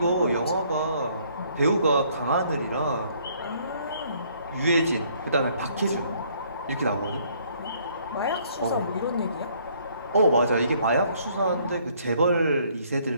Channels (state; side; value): inverted; both; correlation -0.64